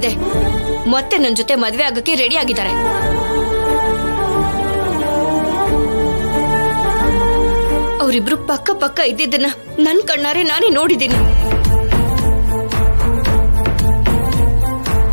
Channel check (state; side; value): inverted; both; correlation -1.00